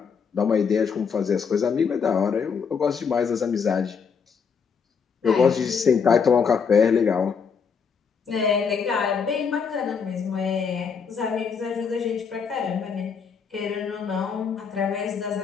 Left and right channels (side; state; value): right; quieter; 6.1 dB